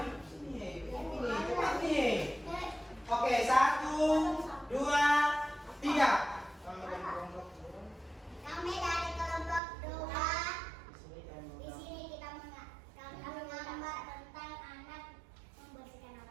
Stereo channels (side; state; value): left; drops out; at 9.6 s